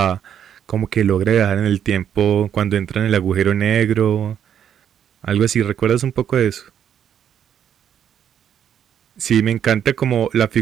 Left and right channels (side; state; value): left; quieter; 9.1 dB